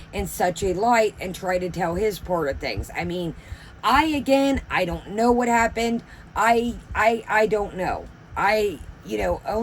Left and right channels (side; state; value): both; identical; correlation 1.00